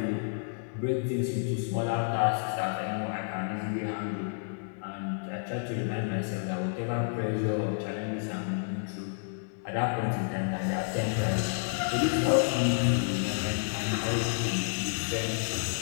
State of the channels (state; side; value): silent; right; digital silence